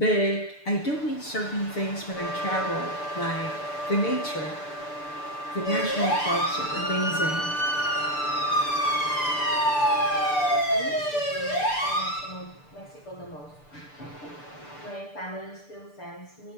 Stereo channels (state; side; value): late; right; 6.8 ms